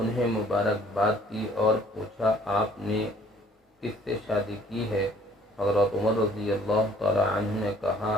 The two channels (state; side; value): normal; both; correlation 0.58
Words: مبارکباد دی اور پوچھا، آپ نے کس سے شادی کی ہے؟ حضرت عمر رضی اللہ تعالی عنہ نے کہا،